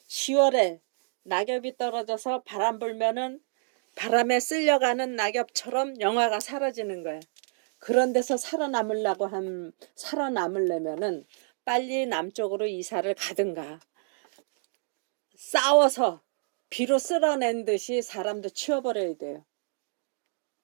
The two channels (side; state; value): left; silent; digital silence